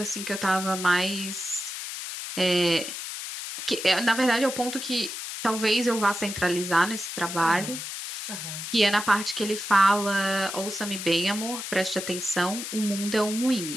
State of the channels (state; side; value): noise; left; hiss, 7 dB below the sound